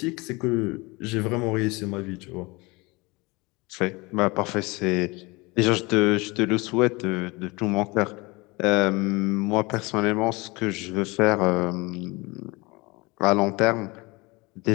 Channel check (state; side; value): quieter; right; 24.9 dB